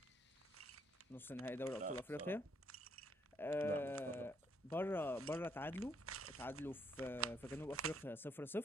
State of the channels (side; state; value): both; normal; correlation 0.71